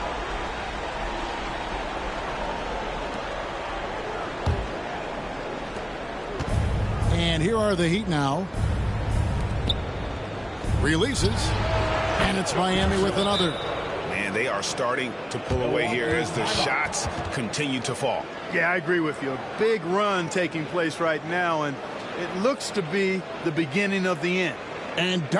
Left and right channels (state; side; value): identical; both; correlation 1.00